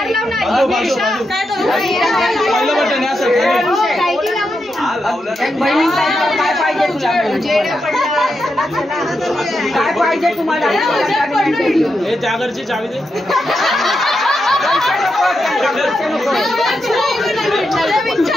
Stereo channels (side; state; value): both; normal; correlation 0.85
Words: काय पाहिजे तुम्हाला? त्या घरची चावी दे.